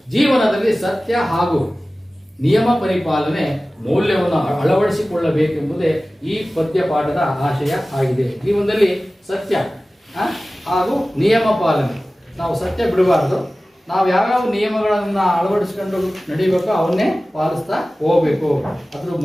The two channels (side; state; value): both; normal; correlation 0.97